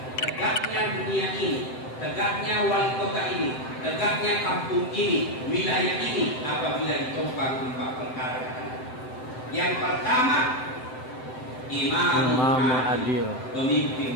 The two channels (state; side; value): late; right; 7.8 ms